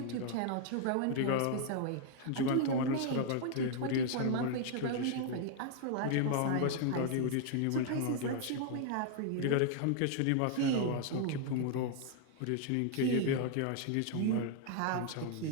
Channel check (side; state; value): both; different; correlation 0.00